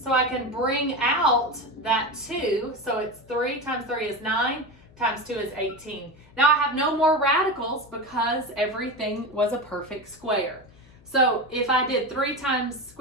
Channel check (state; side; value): noise; left; hum, 25 dB below the sound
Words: I can bring out that 2. So it's 3 times 3 is 9. Times 2 is 18. Now I have no more radicals because everything was a perfect square. So if I did 3 times